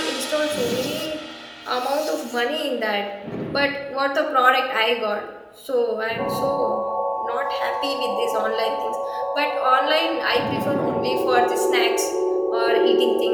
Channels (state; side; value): identical; both; correlation 1.00